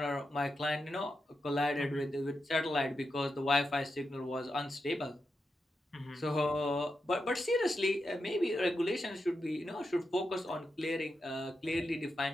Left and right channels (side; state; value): both; normal; correlation 0.87